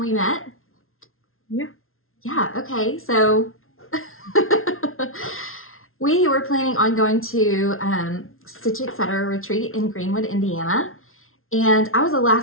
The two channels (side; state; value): right; late; 0.61 ms